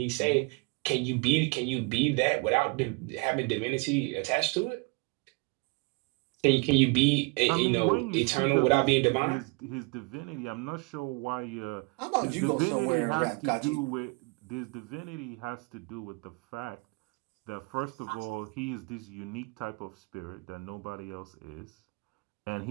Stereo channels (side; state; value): left; quieter; 29.0 dB